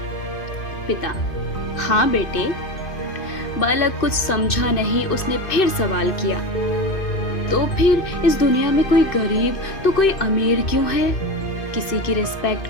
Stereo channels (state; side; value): late; right; 2.6 ms